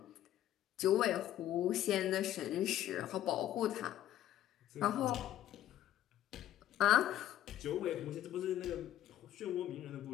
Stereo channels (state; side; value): quieter; right; 12.5 dB